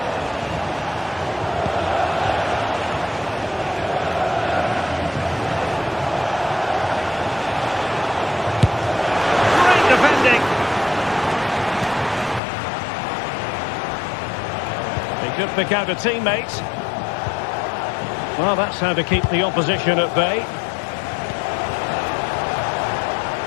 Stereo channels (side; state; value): right; drops out; at 12.4 s